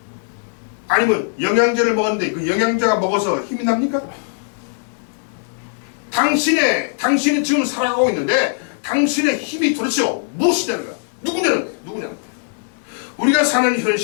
아니면 영양제를 먹었는데 그 영양제가 먹어서 힘이 납니까? 당신이 지금 살아가고 있는데 당신의 힘이 도대체 무엇이냐는 거야? 누구냐는 거야? 우리가 사는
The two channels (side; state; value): right; silent; digital silence